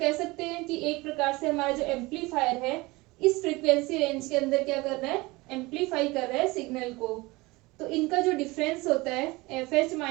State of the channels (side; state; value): left; quieter; 22.4 dB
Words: सकते हैं कि एक प्रकार से हमारा जो एम्पलीफायर है इस फ्रीक्वेंसी रेंज के अंदर क्या कर रहा है, एम्पलीफाई कर रहा है सिग्नल को। तो इनका जो डिफरेंस होता है F H